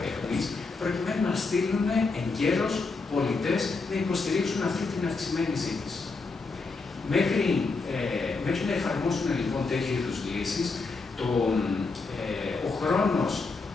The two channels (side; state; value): right; quieter; 4.0 dB